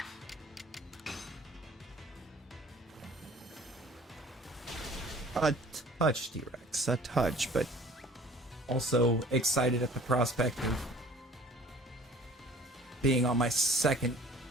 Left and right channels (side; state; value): both; normal; correlation 0.50